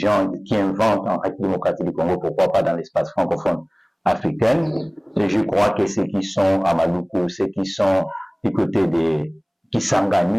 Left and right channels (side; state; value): both; identical; correlation 1.00